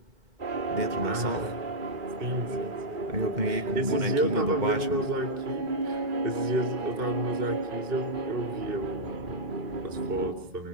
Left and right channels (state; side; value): late; left; 2.2 ms